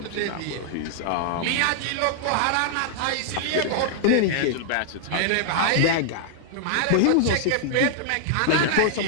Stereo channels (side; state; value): both; different; correlation -0.01